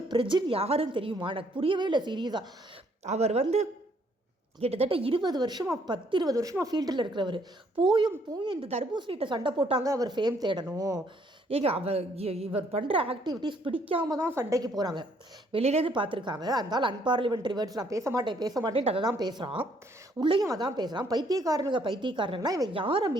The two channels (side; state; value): both; normal; correlation 0.67